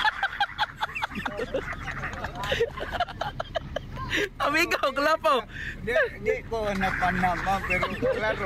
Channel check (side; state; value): both; identical; correlation 1.00